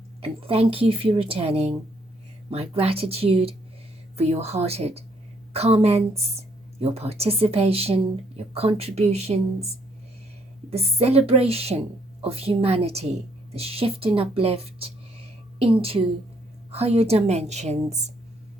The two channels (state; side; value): normal; both; correlation 0.69